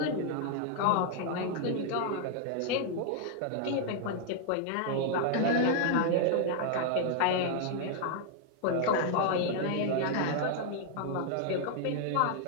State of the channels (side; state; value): both; different; correlation 0.00